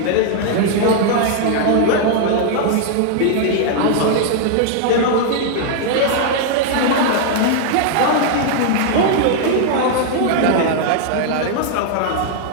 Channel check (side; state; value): both; different; correlation -0.01